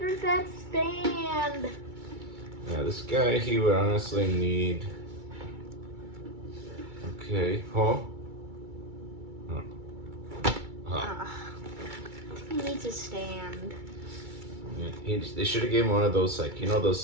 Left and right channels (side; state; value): left; late; 2.3 ms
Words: that stand. Yeah, this guy, he would honestly need... Okay. Huh? He needs to stand. Yeah, they should have given one of those, like, you know those